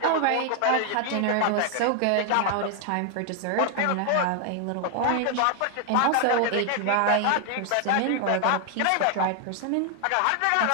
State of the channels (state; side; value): different; both; correlation 0.00